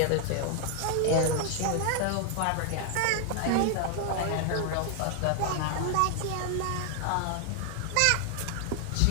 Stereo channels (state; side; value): different; both; correlation 0.00